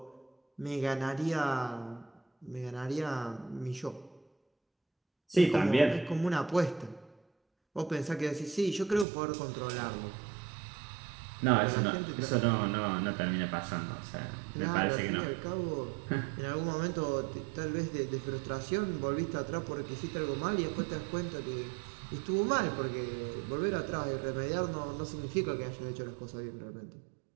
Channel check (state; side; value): drops out; left; at 9.1 s